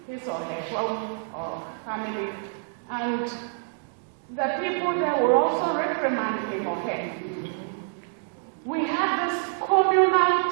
his or her home or family. And the people there will also reprimand him or her. We had this communal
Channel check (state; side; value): silent; left; digital silence